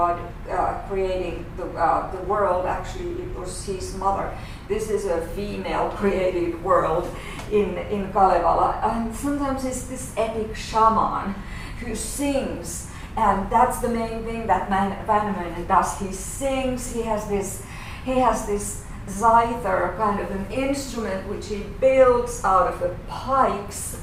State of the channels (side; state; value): both; identical; correlation 1.00